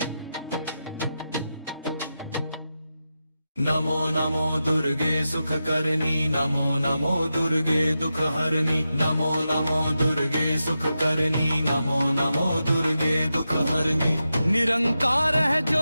नमो नमो दुर्गे सुख करनी, नमो नमो दुर्गे दुख हरनी, नमो नमो दुर्गे सुख करनी, नमो नमो दुर्गे दुख हरनी। निरंकार है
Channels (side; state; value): both; inverted; correlation -0.90